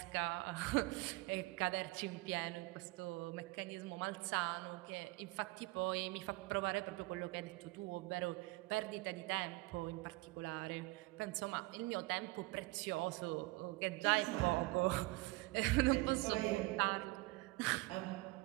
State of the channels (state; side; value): quieter; left; 22.2 dB